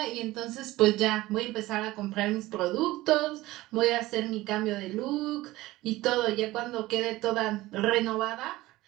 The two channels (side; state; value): left; quieter; 18.0 dB